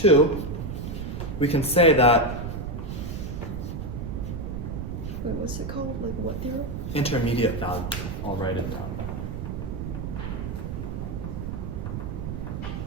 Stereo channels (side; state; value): right; noise; rumble, 5 dB below the sound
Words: we can say that Wait, what's it called? Like what theorem? intermediate value theorem. I'll write it down.